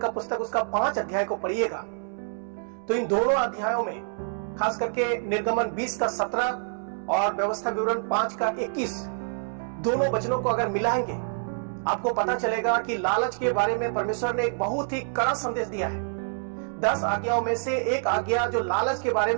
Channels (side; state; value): left; silent; digital silence